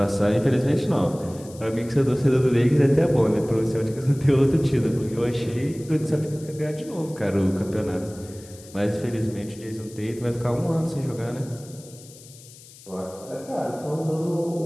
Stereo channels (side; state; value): left; noise; hiss, 21 dB below the sound